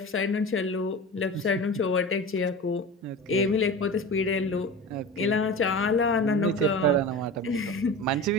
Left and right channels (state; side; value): normal; both; correlation 0.31